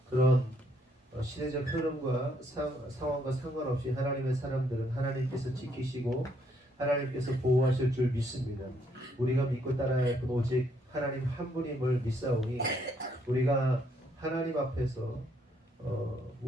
그런 시대적 흐름과 상황과 상관없이 하나님의 사람들은 하나님께서 지키시고 하나님께서 보호하실 줄 믿습니다. 우리가 믿고 따라야 할 분 오직 하나님 한 분임을 믿사오니 우리가 하나님 앞에서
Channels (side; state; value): both; normal; correlation 0.71